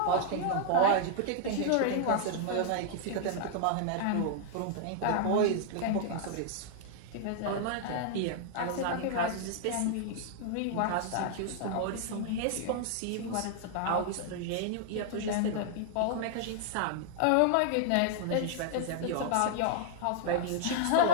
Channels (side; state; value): both; different; correlation -0.01